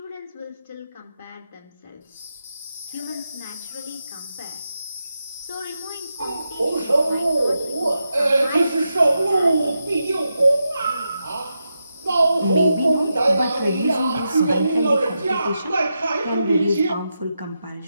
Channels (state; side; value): inverted; both; correlation -0.87